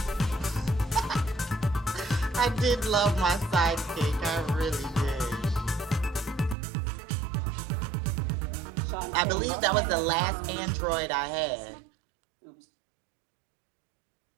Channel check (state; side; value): drops out; left; at 6.6 s